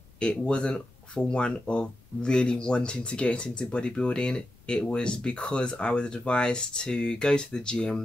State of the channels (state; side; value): noise; left; rumble, 27 dB below the sound